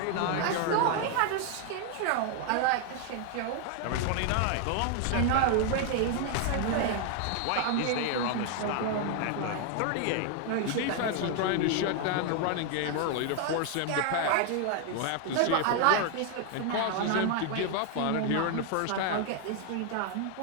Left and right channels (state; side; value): different; both; correlation 0.01